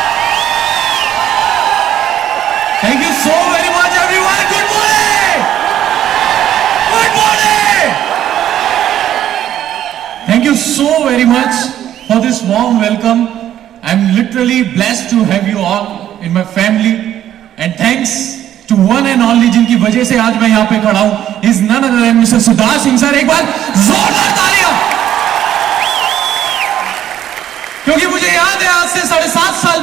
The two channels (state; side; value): quieter; left; 11.3 dB